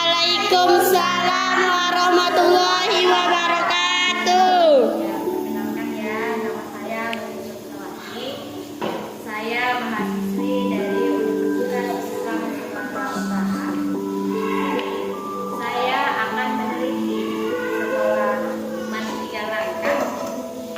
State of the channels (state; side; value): identical; both; correlation 1.00